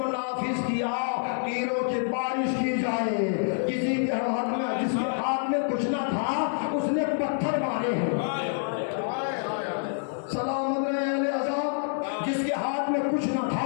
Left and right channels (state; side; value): silent; right; 60 dB below the other